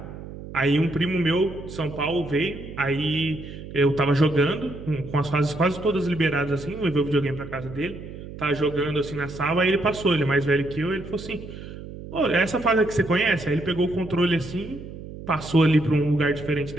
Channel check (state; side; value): noise; right; hum, 12 dB below the sound